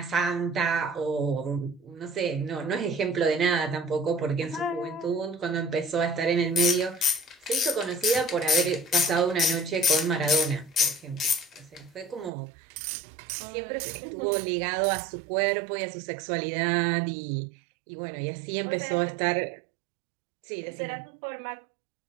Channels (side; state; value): left; drops out; at 12.3 s